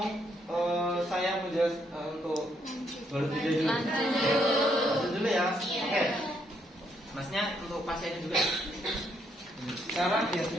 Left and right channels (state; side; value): normal; both; correlation 0.74